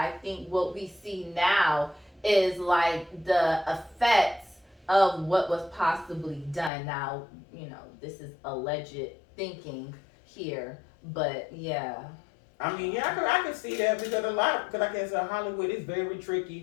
think what we see now is like the effects of what was possibly done. Now, this is alleged thinking here, but yeah. I mean, yeah, I could see that because because I guess Hollywood is very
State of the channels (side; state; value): right; drops out; at 6.7 s